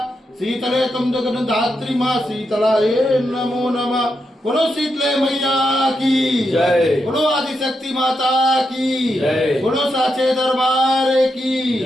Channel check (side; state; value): both; normal; correlation 0.84